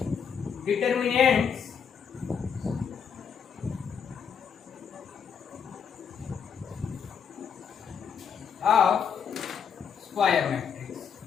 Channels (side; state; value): right; quieter; 7.0 dB